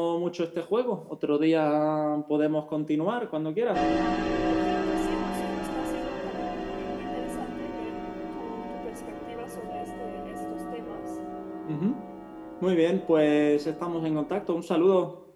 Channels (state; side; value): identical; both; correlation 1.00